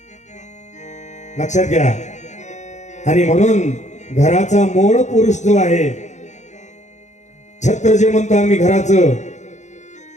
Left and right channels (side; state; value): right; late; 0.34 ms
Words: लक्षात घ्या. आणि म्हणून घराचा मूळ पुरुष जो आहे, छत्र जे म्हणतो आम्ही घराचं,